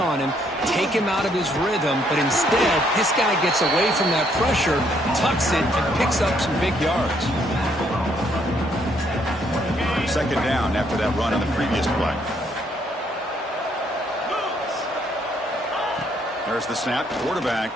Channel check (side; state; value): both; normal; correlation 0.70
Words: him, take him out of his rhythm, but instead, this guy gets away from that pressure, tucks it, and picks up some big yards. Second down after that run on the previous play. There's the snap. Quarterback